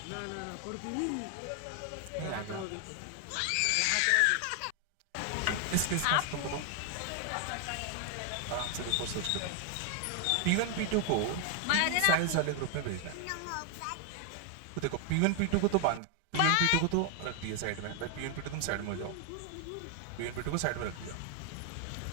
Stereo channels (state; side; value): different; both; correlation 0.00